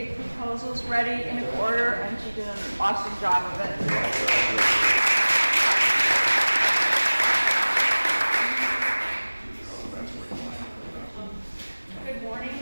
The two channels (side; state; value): both; inverted; correlation -1.00